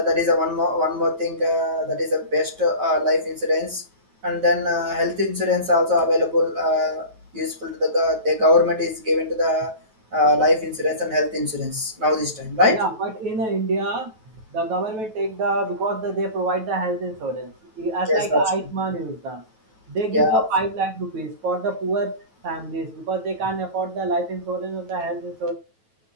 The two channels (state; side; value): late; left; 9.2 ms